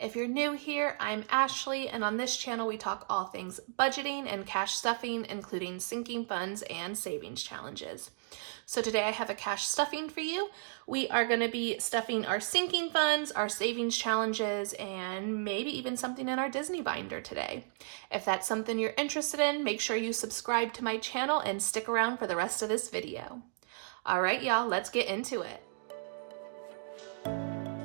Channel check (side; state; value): left; silent; digital silence